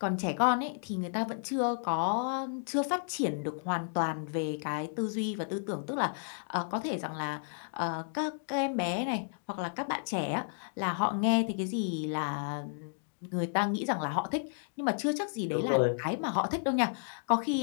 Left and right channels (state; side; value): silent; right; digital silence